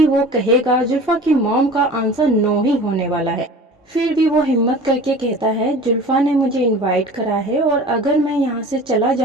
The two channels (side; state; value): both; normal; correlation 0.40